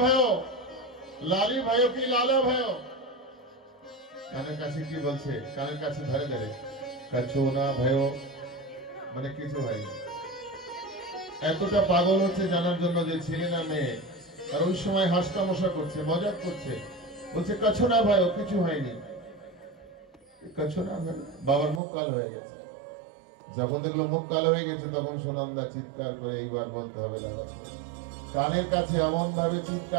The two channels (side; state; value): left; drops out; at 21.8 s